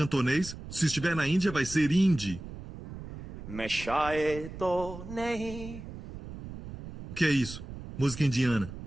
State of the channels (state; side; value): noise; right; rumble, 12 dB below the sound